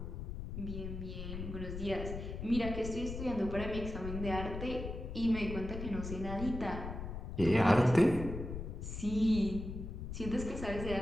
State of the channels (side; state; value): left; noise; rumble, 6 dB below the sound